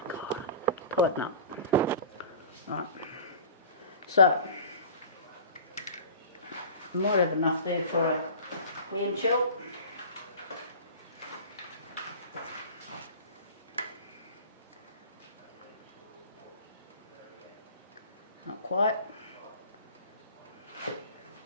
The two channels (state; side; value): inverted; both; correlation -0.39